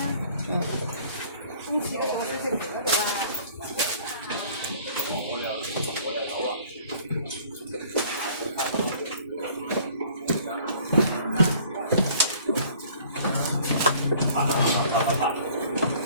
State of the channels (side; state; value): both; inverted; correlation -0.53